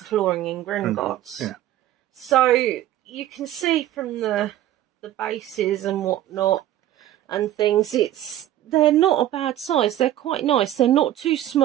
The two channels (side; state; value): left; quieter; 13.1 dB